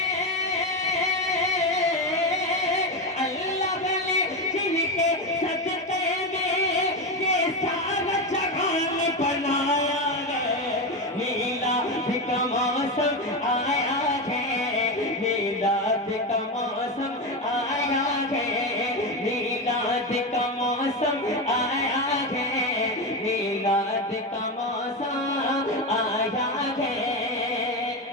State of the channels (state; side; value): normal; both; correlation 0.16